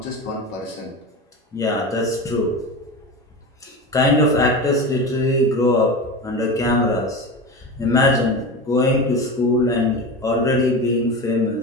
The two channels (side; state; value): both; normal; correlation 0.26